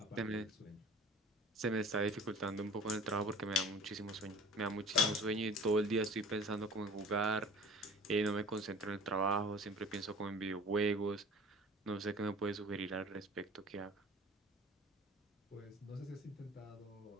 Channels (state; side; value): normal; both; correlation 0.44